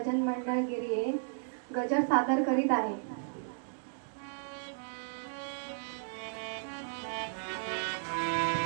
मंडळ गिरिये गजर सादर करीत आहे.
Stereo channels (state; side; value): silent; left; digital silence